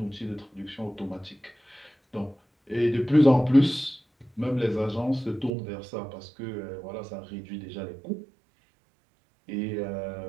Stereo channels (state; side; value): drops out; left; at 5.5 s